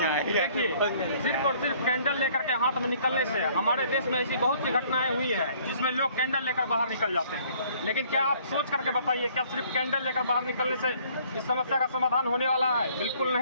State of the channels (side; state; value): both; inverted; correlation -0.59